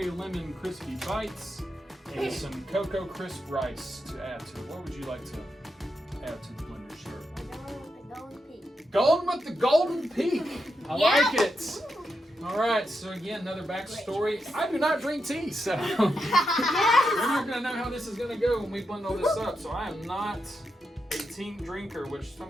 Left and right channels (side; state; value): both; normal; correlation 0.85